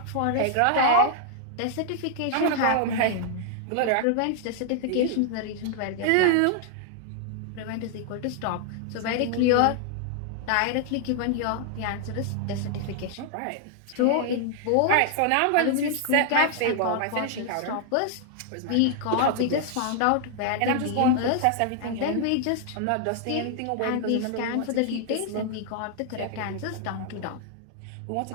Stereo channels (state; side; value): different; both; correlation 0.00